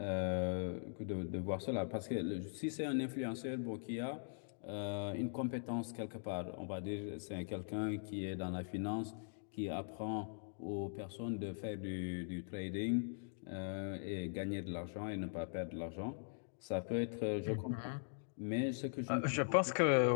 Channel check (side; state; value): right; silent; digital silence